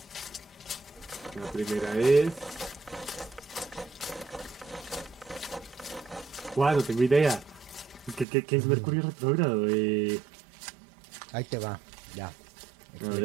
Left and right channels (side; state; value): left; drops out; at 8.2 s